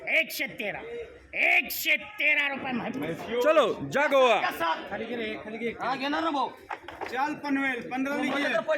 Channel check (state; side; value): identical; both; correlation 1.00